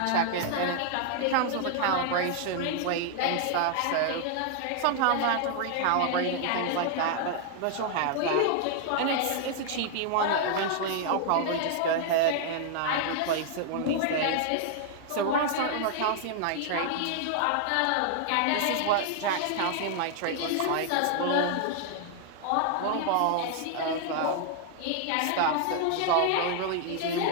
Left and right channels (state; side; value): different; both; correlation 0.00